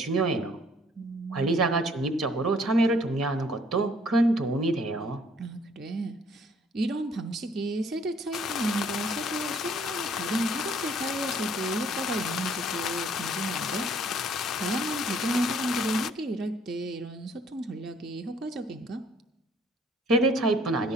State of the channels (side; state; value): both; normal; correlation 0.60